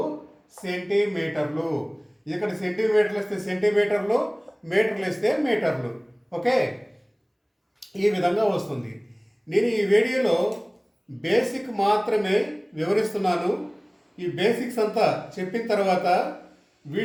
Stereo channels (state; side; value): identical; both; correlation 1.00